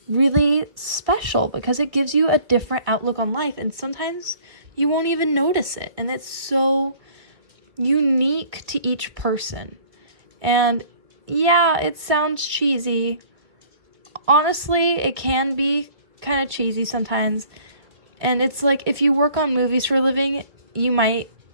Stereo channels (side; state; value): left; late; 1.9 ms